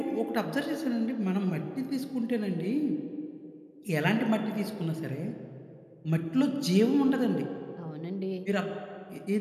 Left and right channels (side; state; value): both; identical; correlation 1.00